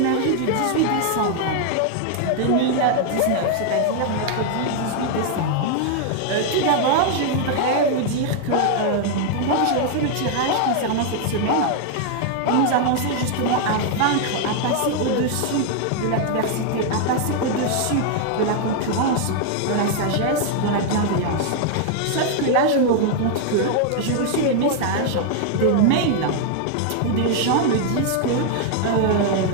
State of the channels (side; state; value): both; different; correlation 0.00